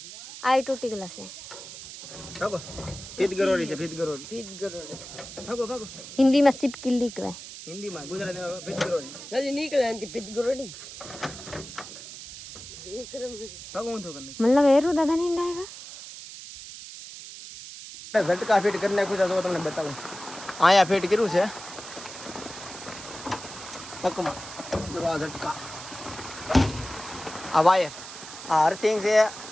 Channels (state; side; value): noise; right; hiss, 13 dB below the sound